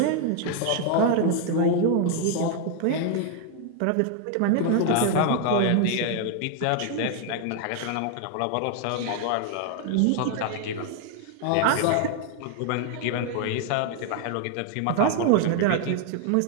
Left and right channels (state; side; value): different; both; correlation 0.00